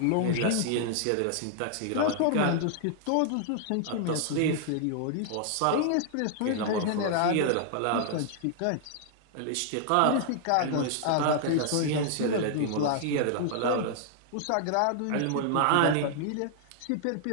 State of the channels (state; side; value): different; both; correlation 0.00